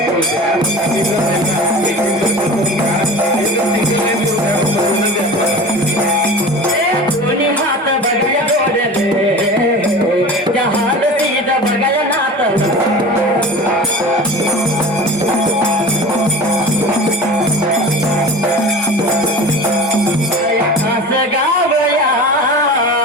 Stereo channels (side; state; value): both; normal; correlation 0.35